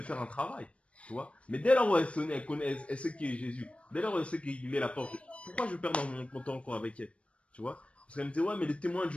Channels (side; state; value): right; late; 0.062 ms